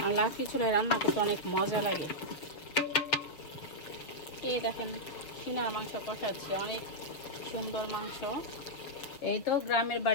আর লাকড়ি চুলায় রান্না করতে অনেক মজা লাগে। এই দেখেন সিনার মাংস কষাচ্ছি, অনেক সুন্দর মাংস। এই তো গ্রামের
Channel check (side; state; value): right; late; 6.8 ms